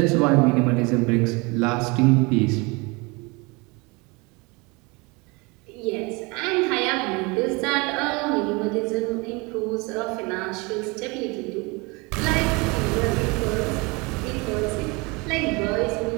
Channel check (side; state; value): left; quieter; 26.9 dB